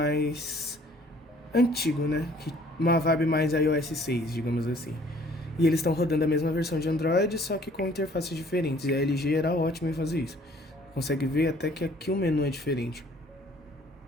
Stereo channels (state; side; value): normal; both; correlation 0.57